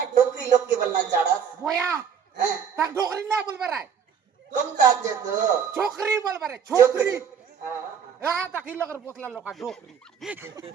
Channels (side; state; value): left; quieter; 7.4 dB